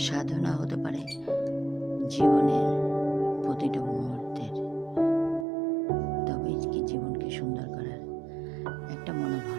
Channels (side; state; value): left; drops out; at 5.5 s